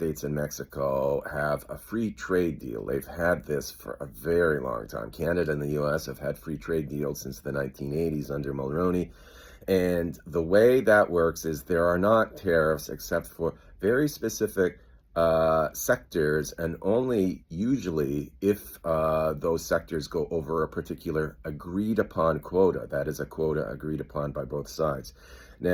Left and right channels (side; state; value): both; identical; correlation 1.00